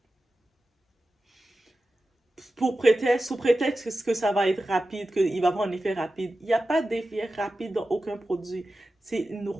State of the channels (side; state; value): both; normal; correlation 0.93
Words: sous prétexte que ça va être rapide, qu'il va avoir un effet rapide. Il n'y a pas d'effet rapide dans aucun produit. C'est une